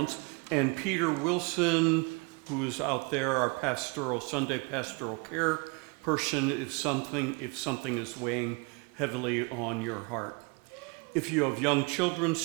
And Peter Wilson, who is out there, our Sunday pastoral care person, if something is weighing heavily on your heart. If you have young children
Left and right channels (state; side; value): quieter; left; 30.4 dB